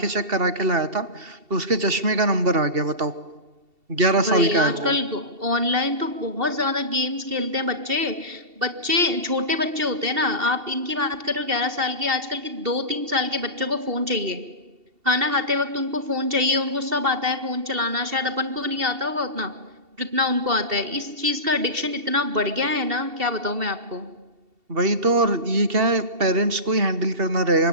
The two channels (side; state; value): left; late; 2.7 ms